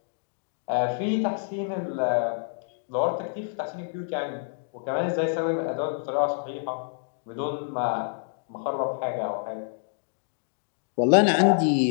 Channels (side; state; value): right; silent; digital silence